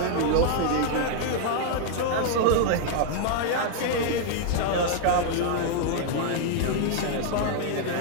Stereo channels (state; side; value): different; both; correlation 0.00